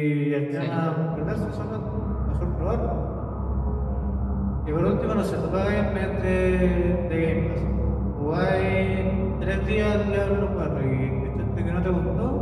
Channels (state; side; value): identical; both; correlation 1.00